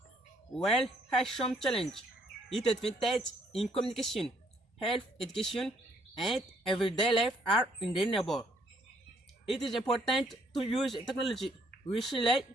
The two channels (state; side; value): normal; both; correlation 0.67